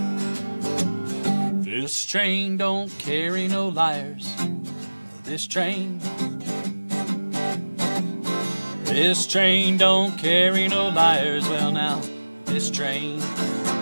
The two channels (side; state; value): both; inverted; correlation -1.00